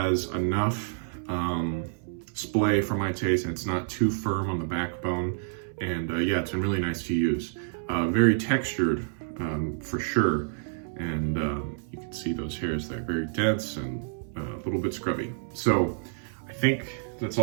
enough splay for my taste, and it's not too firm on the backbone. And yeah, it's been really nice to use. Very textured for sure. And you can see those hairs there, very dense and a little bit scrubby. So I think that's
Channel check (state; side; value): silent; left; 59 dB below the other